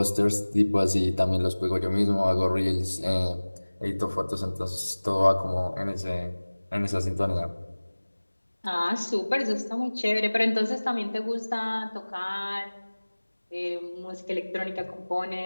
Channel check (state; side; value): inverted; both; correlation -1.00